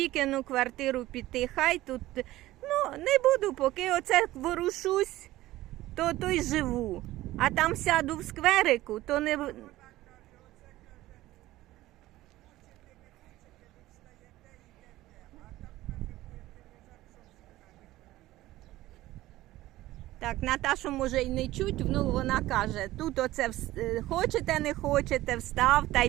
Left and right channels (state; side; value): quieter; left; 16.3 dB